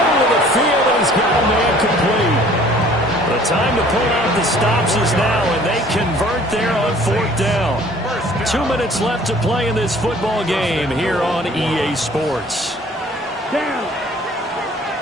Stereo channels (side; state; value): both; normal; correlation 0.53